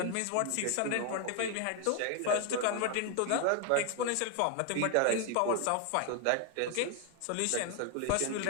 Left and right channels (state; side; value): different; both; correlation 0.00